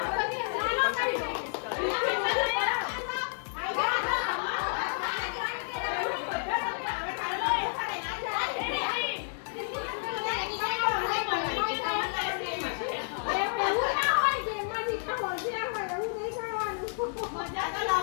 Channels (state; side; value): silent; right; digital silence